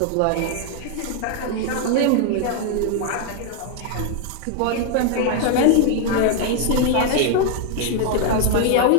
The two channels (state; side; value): different; both; correlation 0.00